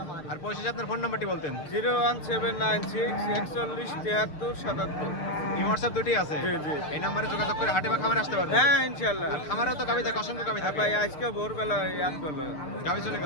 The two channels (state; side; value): late; right; 6.7 ms